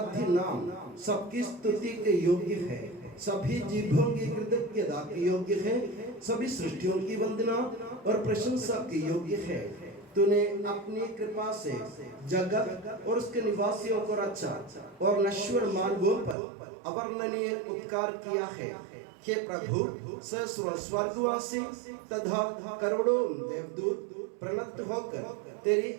नाम सबकी स्तुति के योग्य है, सभी जीवों की कृतज्ञता के योग्य है, सभी सृष्टियों की वंदना और प्रशंसा के योग्य है। तूने अपनी कृपा से जगत और उसके निवासियों को रचा और नश्वर मानवों पर अवर्णनीय उपकार किया है। हे प्रभु, सहस्रों स्वर्गवासी तथा करोड़ों देवदूत प्रणत होकर तेरी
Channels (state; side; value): drops out; left; at 16.4 s